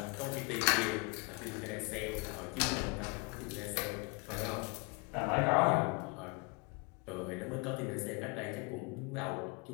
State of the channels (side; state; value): right; quieter; 30.9 dB